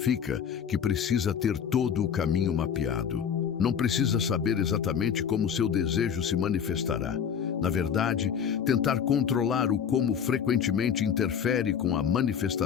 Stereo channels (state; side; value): quieter; right; 7.8 dB